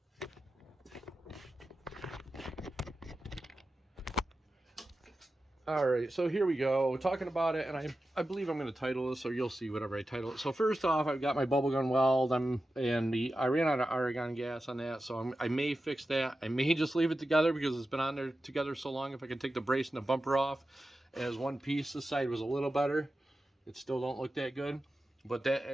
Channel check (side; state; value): both; normal; correlation 0.92